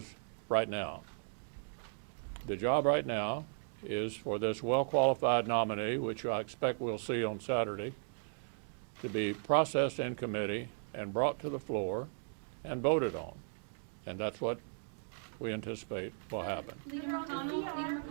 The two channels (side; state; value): left; silent; digital silence